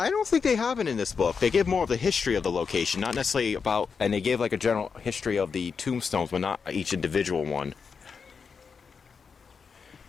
don't think they have it in this book. They give more of the history of the location, not necessarily about, and they give like a general history of the tombstones, but not each individual one.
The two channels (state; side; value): quieter; right; 5.7 dB